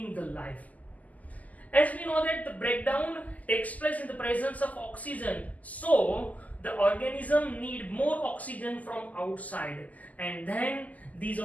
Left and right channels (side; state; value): right; late; 0.077 ms